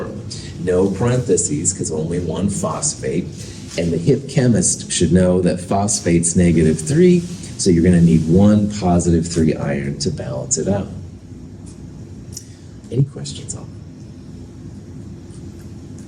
No parentheses because only one phosphate. And the hip chemist should know that phosphate's -3, so you're going to need one +3 iron to balance it out. Any questions on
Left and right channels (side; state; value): both; identical; correlation 1.00